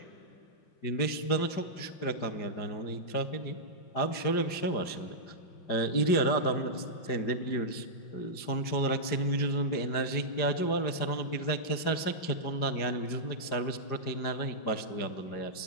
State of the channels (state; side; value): late; right; 5.0 ms